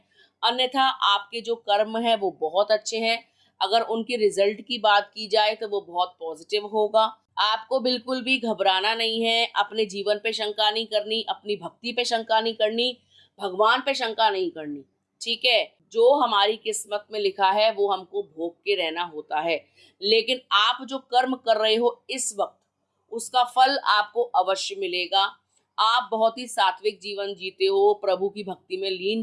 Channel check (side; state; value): both; identical; correlation 1.00